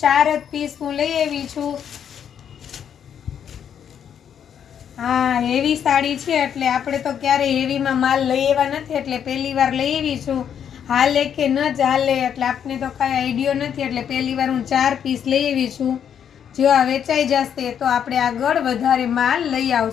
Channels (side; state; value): right; quieter; 8.6 dB